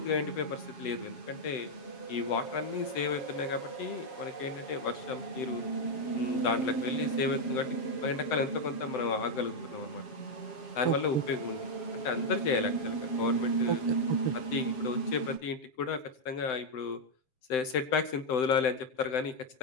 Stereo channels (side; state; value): right; late; 7.8 ms